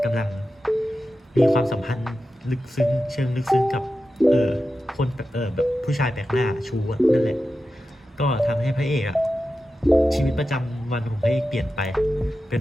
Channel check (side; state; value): both; normal; correlation 0.92